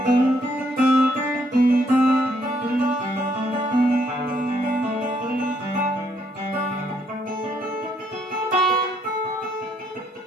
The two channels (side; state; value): both; normal; correlation 0.71